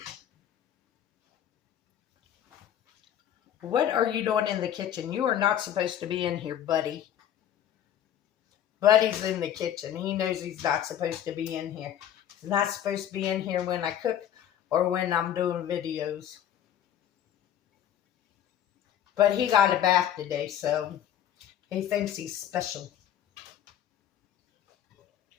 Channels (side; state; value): right; quieter; 10.5 dB